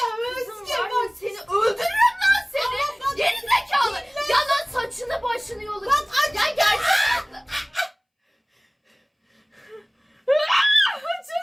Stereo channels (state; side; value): identical; both; correlation 1.00